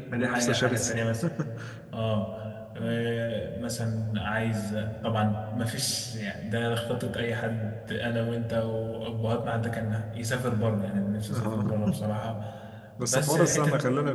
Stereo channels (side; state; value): both; identical; correlation 1.00